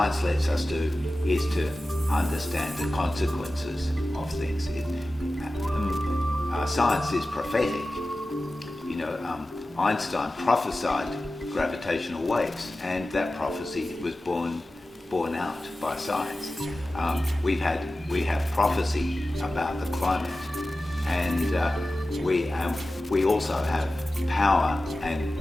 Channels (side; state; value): both; normal; correlation 0.95